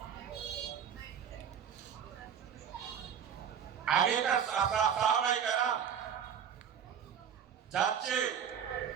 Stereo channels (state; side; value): quieter; left; 8.1 dB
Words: আগেকার সাহাবায়ে কেরাম যাচ্ছে